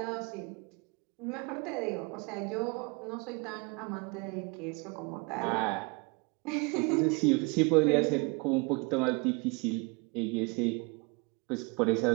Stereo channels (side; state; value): left; quieter; 30.0 dB